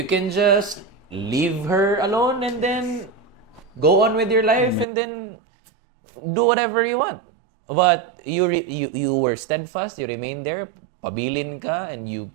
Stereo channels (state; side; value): drops out; left; at 4.9 s